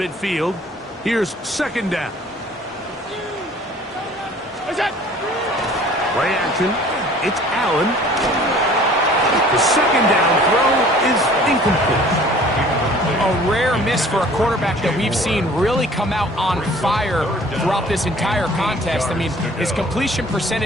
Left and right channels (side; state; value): both; normal; correlation 0.51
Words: here's 2nd down. What's up? Play action. It's Allen. The 2nd down throw is incomplete. A rare miss for a quarterback that we've seen really come out on fire throughout this entire contest. I mean, his completion